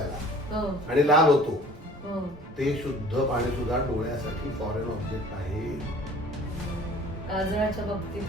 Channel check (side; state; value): both; normal; correlation 0.48